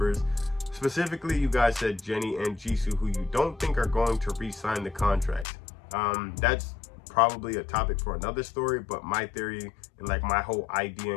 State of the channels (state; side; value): drops out; right; at 5.5 s